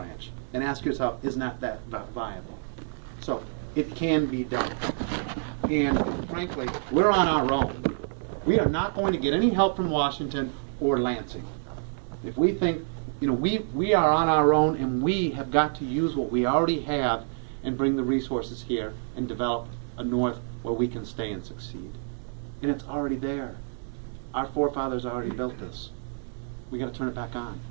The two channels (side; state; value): left; silent; 59 dB below the other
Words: and ask yourself, is not that viable? So it can be done. And frankly, we're on our own. We are not going to get any help from Washington or Lansing. If we think, you know, we are on our own, and we have got to use what we already have and bring the resources here and develop a north where we can stay and succeed. And it's already there. Our forefathers already built this. We got to turn it back on.